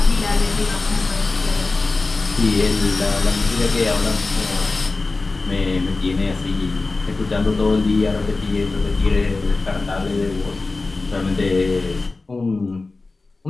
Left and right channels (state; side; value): quieter; right; 3.6 dB